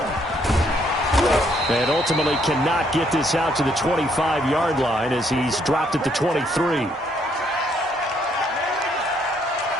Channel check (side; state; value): both; normal; correlation 0.70